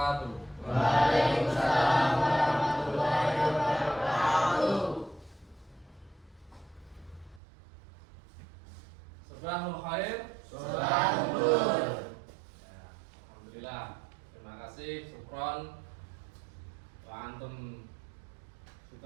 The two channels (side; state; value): left; drops out; at 7.4 s